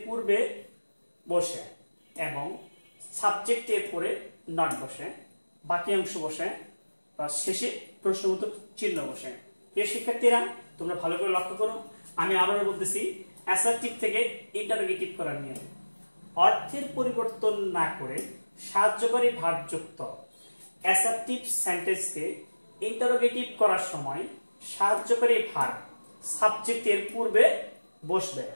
পূর্বে বসে এবং সাবজেক্টের পরে নট বসে, বাকি অংশ বসে বা শেষে প্রশ্নবোধক চিহ্ন বসে। প্রিয় শিক্ষার্থীরা, তোমরা ভালো করে লক্ষ্য করো। আমি আবারও বলতেছি, অ্যাসার্টিভ থেকে ইন্টারোগেটিভ করার নিয়ম অর্থের পরিবর্তন না করে সাহায্যকারী ভার্ব যুক্ত অ্যাসার্টিভ সেন্টেন্সকে ইন্টারোগেটিভ করার সময় সাহায্যকারী ভার্ব সাবজেক্টের পূর্বে বসবে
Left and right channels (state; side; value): inverted; both; correlation -1.00